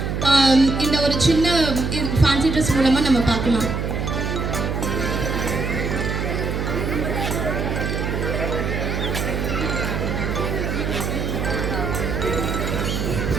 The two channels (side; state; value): right; noise; hum, 1 dB below the sound